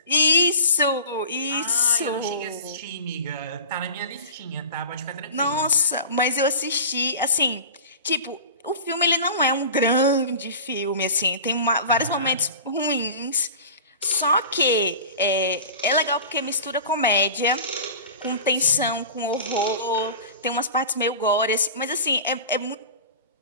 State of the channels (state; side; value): inverted; both; correlation -0.37